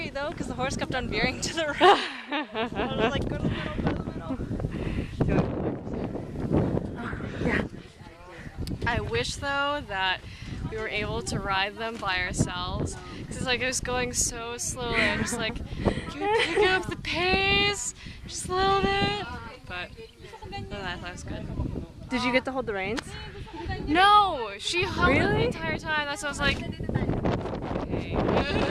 though, because the horse kept on veering to the right. I was like, go to the middle, go to the middle. Yeah. I wish though that we were able to ride them by ourselves. Because it's like I was going so slowly. I'm just like, can we pick up the pace just a little bit? But I thought it was good. Did you get to hold the reins? No, she held it the Really? entire time. That's why I was like, okay.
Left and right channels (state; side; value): identical; both; correlation 1.00